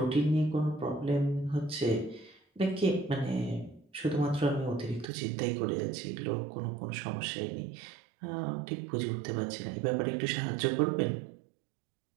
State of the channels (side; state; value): left; drops out; at 5.1 s